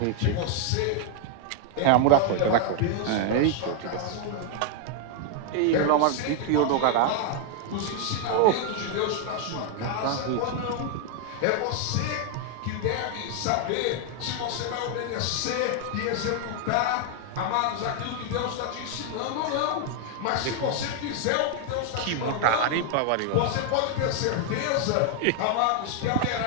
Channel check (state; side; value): different; both; correlation 0.00